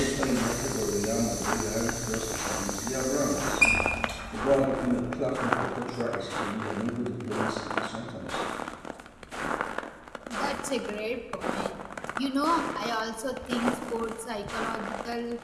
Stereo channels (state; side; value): identical; both; correlation 1.00